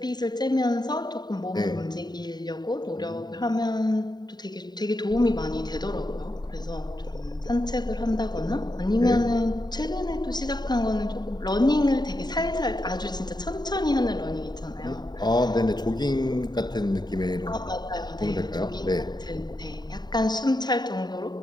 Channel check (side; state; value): right; late; 0.20 ms